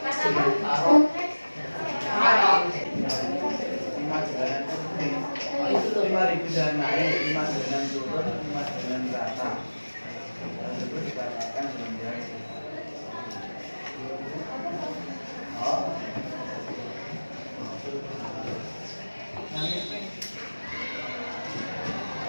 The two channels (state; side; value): inverted; both; correlation -1.00